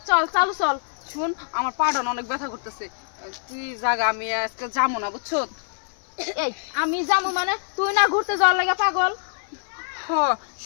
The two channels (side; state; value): right; silent; digital silence